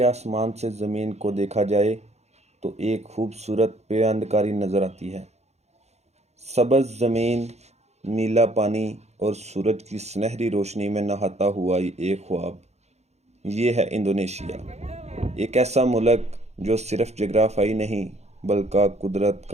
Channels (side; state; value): left; late; 0.32 ms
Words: آسمان سے زمین کو دیکھا جائے تو ایک خوبصورت پیوندکاری نظر آتی ہے۔ سبز زمین، نیلا پانی اور سورج کی سنہری روشنی میں نہاتا ہوا ایک خواب۔ یہ ہے انڈونیشیا، ایک ایسا ملک جو صرف جغرافیائی نہیں بلکہ قدرت